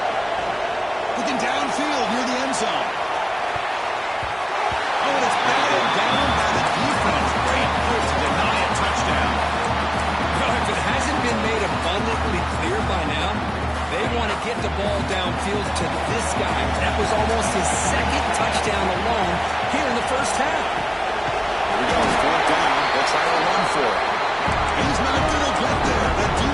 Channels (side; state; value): both; identical; correlation 1.00